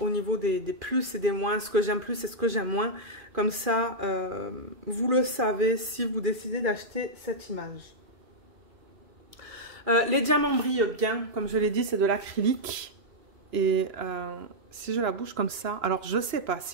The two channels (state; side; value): late; left; 2.4 ms